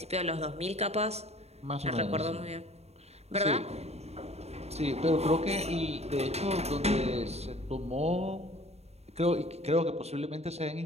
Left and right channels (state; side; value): late; left; 0.31 ms